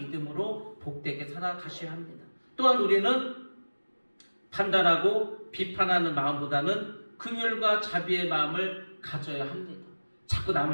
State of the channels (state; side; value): inverted; both; correlation -1.00